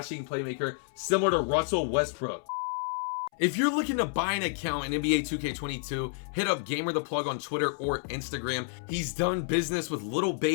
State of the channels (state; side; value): silent; right; 58 dB below the other